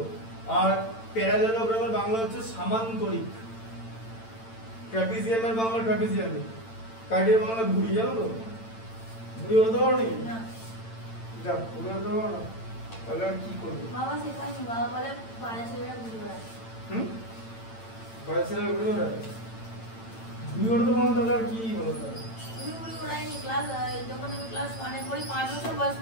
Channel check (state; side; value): late; right; 8.9 ms